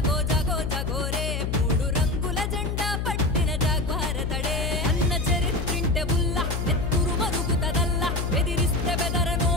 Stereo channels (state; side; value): noise; left; hum, 1 dB below the sound